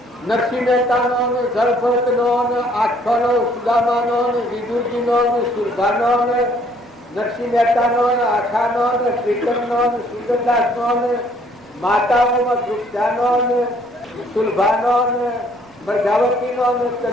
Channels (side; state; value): both; normal; correlation 0.62